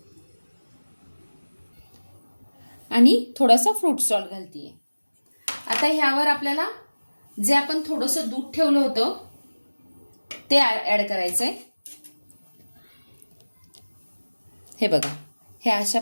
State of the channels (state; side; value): inverted; both; correlation -1.00